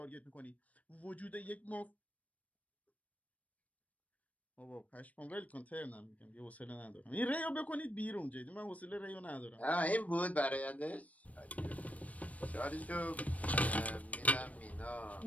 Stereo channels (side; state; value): right; late; 0.069 ms